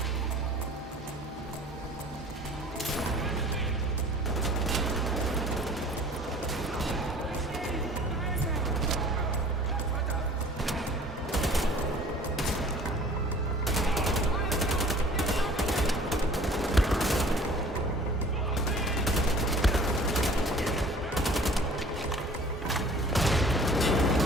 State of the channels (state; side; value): normal; both; correlation 0.48